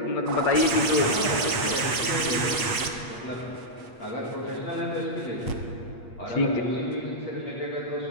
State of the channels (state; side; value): late; right; 8.4 ms